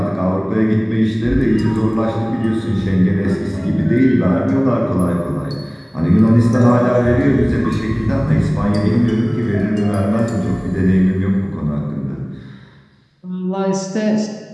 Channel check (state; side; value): identical; both; correlation 1.00